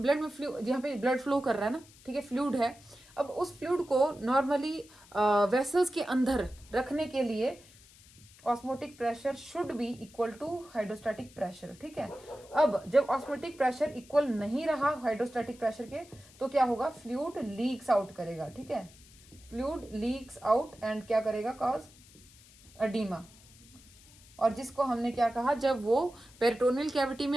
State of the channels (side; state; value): left; noise; hiss, 24 dB below the sound